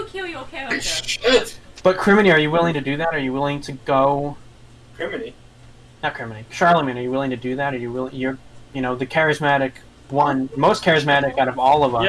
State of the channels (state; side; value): identical; both; correlation 1.00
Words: kill your character. Shit! But Crimeny, are you willing to do that? Are you willing to go? Criminy. Not Crimeny. Charlemagne, are you willing to do that? Are you willing? You're, the charismatic one, most charismatic out of all of